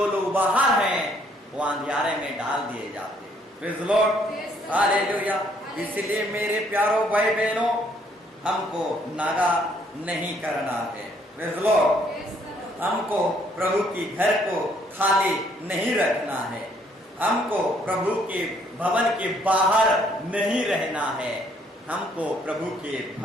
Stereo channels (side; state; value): both; normal; correlation 0.66